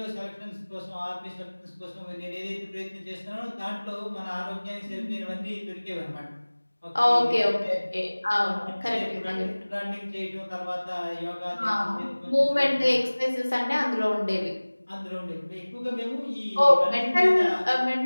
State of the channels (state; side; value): inverted; both; correlation -1.00